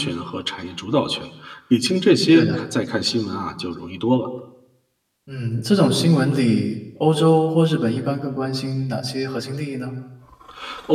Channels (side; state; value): both; identical; correlation 1.00